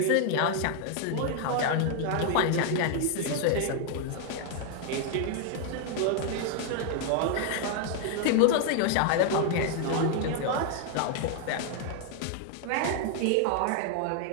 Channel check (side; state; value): both; different; correlation 0.00